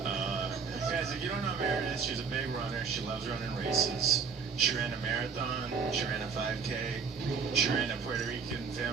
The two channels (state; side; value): quieter; left; 5.7 dB